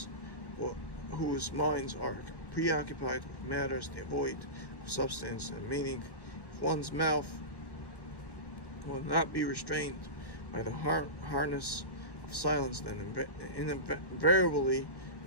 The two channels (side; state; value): right; late; 1.1 ms